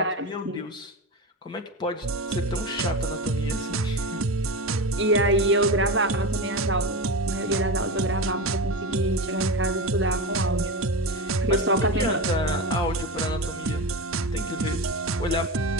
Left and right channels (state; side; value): normal; both; correlation 0.21